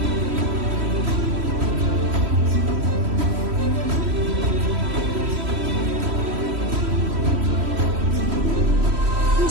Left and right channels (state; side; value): late; left; 3.1 ms